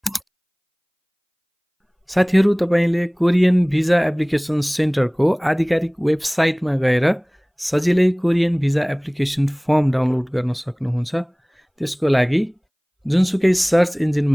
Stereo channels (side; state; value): both; identical; correlation 1.00